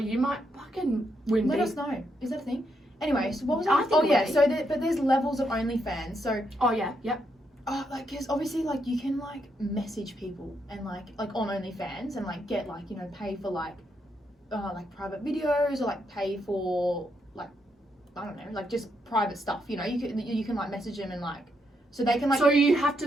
might fucking win. Let us know. Is that a thing? Anyway, so what was I I? think Oh it yeah, would be. so but there's levels of OnlyFans. So Oh yeah, yep. like, because obviously, like, you can, like, message people and like on OnlyFans and, like, get, like, you know, pay for, like private videos, or, like, pay for, like, I don't know, like, just private stuff, you know. You can like message them and, like, so they can, like... So you have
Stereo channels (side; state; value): both; normal; correlation 0.79